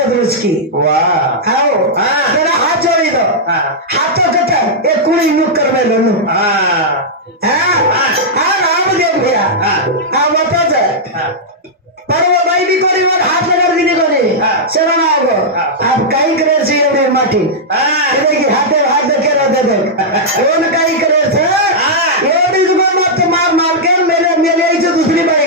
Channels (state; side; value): normal; both; correlation -0.07